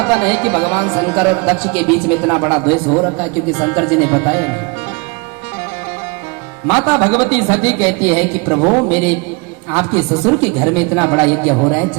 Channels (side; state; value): left; quieter; 29.0 dB